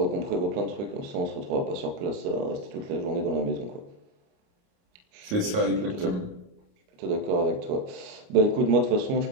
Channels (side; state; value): left; late; 28 ms